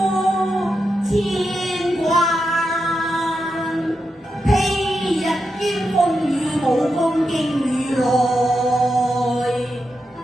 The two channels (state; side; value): normal; both; correlation 0.87